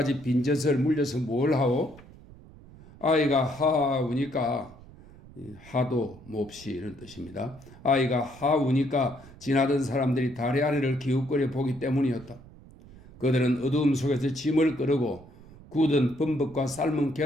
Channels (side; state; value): right; noise; rumble, 21 dB below the sound